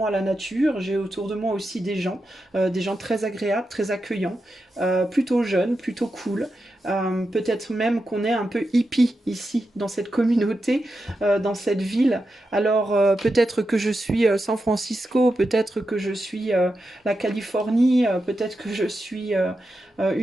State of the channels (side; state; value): both; normal; correlation 0.89